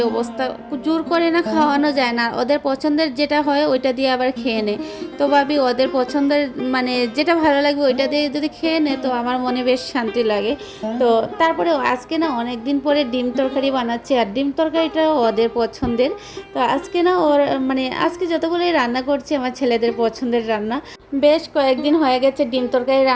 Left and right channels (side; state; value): both; identical; correlation 1.00